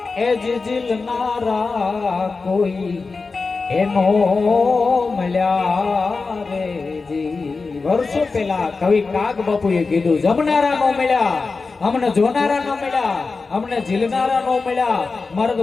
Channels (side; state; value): right; quieter; 4.2 dB